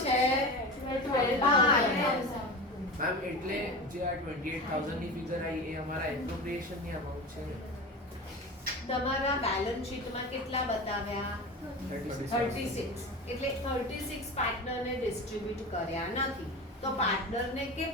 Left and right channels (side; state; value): both; normal; correlation 0.29